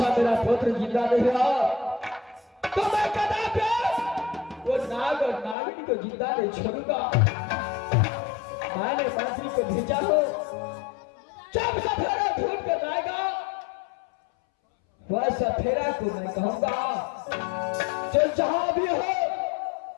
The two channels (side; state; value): right; drops out; at 5.6 s